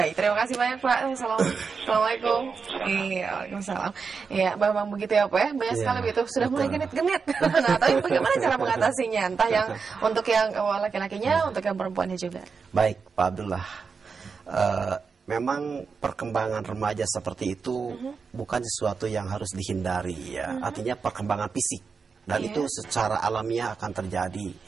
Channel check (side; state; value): left; quieter; 5.3 dB